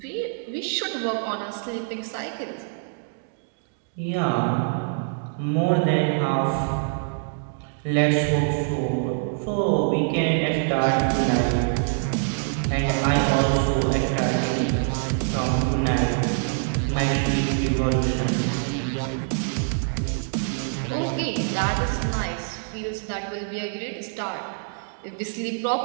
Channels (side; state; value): left; silent; digital silence